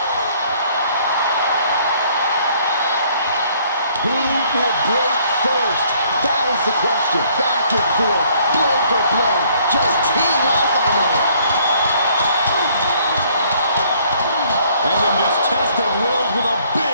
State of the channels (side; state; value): both; inverted; correlation -0.62